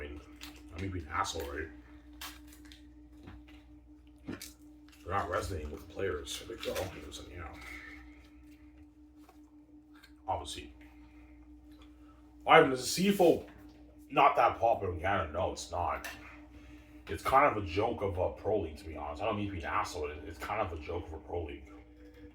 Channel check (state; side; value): identical; both; correlation 1.00